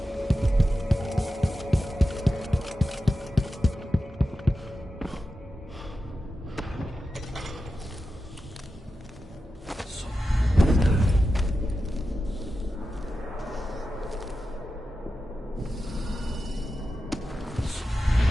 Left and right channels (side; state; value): both; normal; correlation 0.91